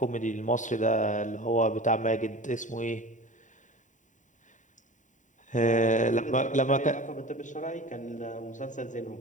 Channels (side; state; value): right; late; 0.36 ms